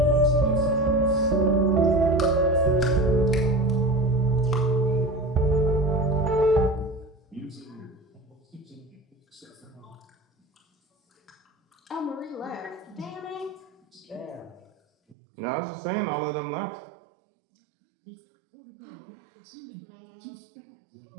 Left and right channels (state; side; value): drops out; left; at 15.2 s